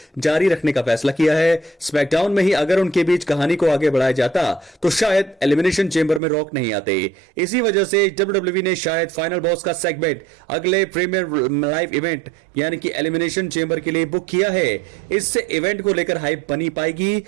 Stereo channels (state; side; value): drops out; left; at 6.2 s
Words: जारी रखने का फैसला किया है। स्मैकडाउन में ही अगर उनके बीच कहानी को आगे बढ़ाया जाता तो शायद एलिमिनेशन चेंबर में रॉक नहीं आते। इसी वजह से WWE ने शायद फाइनल बॉस का सेगमेंट अगले प्रीमियर लाइव इवेंट यानी कि एलिमिनेशन चेंबर के लिए बुक किया है। इससे इवेंट को लेकर हाइप बनी पाएगी